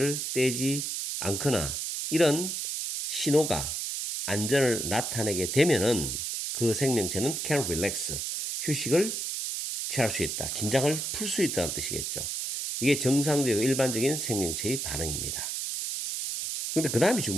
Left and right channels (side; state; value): right; noise; hiss, 3 dB below the sound